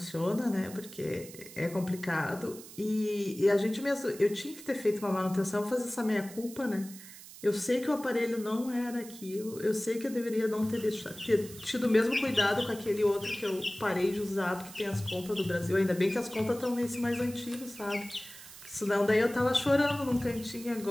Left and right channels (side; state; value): right; noise; hiss, 16 dB below the sound